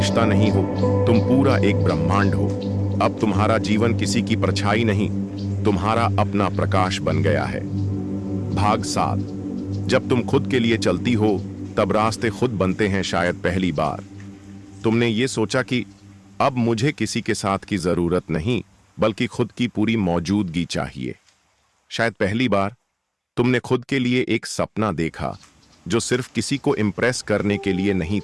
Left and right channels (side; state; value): both; identical; correlation 1.00